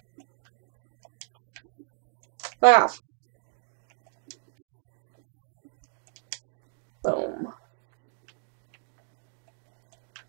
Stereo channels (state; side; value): silent; left; digital silence